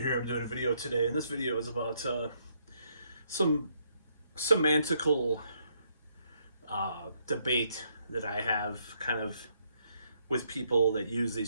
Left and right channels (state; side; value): inverted; both; correlation -0.73